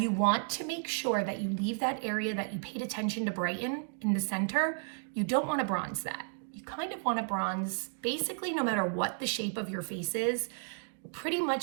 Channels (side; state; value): left; silent; 56 dB below the other